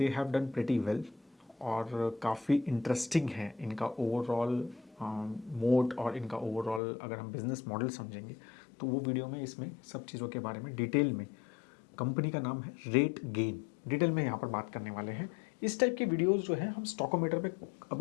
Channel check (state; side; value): drops out; right; at 6.8 s